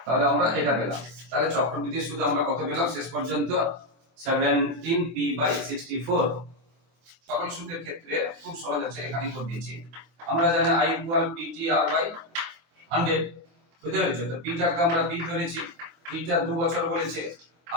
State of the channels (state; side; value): late; left; 23 ms